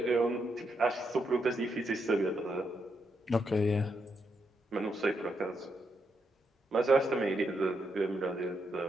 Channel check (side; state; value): both; normal; correlation 0.80